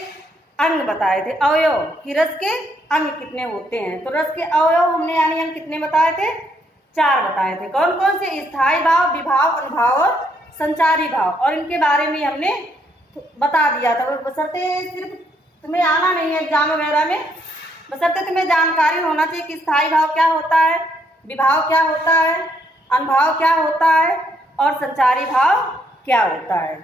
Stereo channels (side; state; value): both; normal; correlation 0.72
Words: अंग बताए थे, अवयव कि रस के अंग कितने होते हैं। तो रस के अवयव हमने यानी अंग कितने बताए थे, 4 बताए थे। कौन कौन से, स्थायी भाव, विभाव, अनुभाव और संचारी भाव। और इनके बारे में हमने बता दिया था। बशर्ते सिर्फ तुम्हें आना नहीं है एग्जाम वगैरह में, बशर्ते तुम्हें जानकारी होना चाहिए कि स्थायी भाव क्या होता है, विभाव क्या होता है, अनुभाव क्या होता है और संचारी भाव क्या होता है।